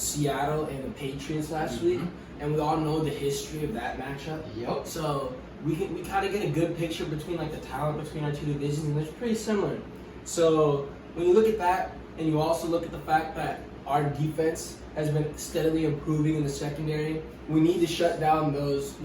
and the Patriots last week, and we all know the history of that matchup. Yep. So we kind of get a good picture between like the talent between our two divisions, and it's pretty similar. So when you look at that, and you also look at the fact that our defense has been steadily improving in the secondary. We need to shut down those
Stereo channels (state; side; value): identical; both; correlation 1.00